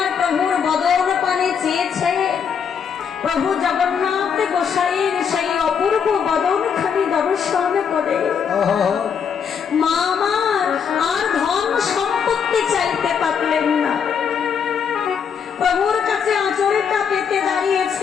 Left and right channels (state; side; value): quieter; right; 7.0 dB